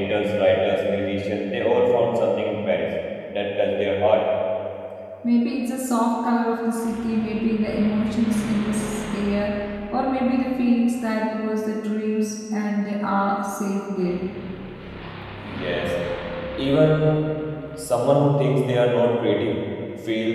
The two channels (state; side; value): identical; both; correlation 1.00